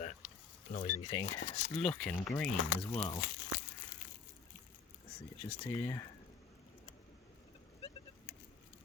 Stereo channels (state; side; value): quieter; right; 5.5 dB